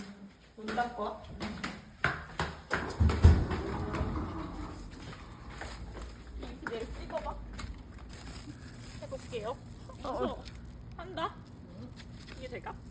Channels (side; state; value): both; identical; correlation 1.00